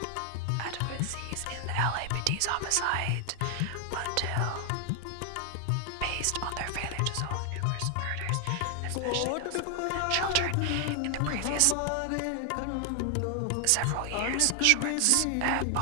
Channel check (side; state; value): both; different; correlation 0.00